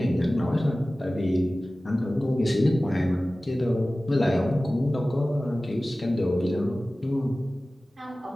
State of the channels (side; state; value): both; normal; correlation 0.97